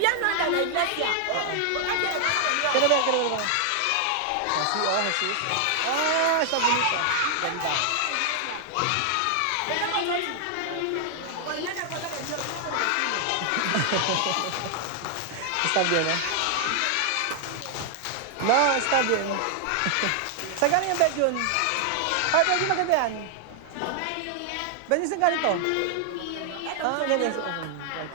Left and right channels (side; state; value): both; different; correlation 0.00